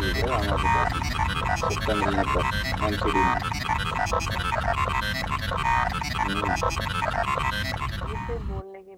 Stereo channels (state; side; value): identical; both; correlation 1.00